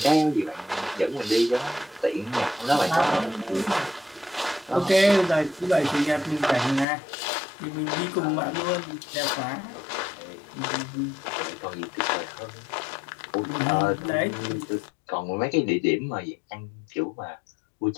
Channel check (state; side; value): drops out; right; at 6.9 s